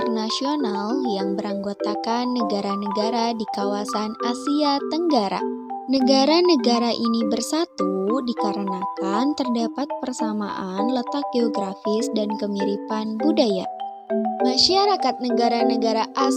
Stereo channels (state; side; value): identical; both; correlation 1.00